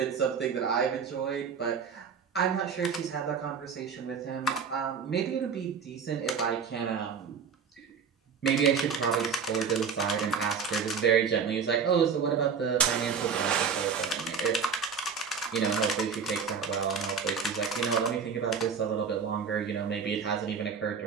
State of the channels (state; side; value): quieter; left; 6.2 dB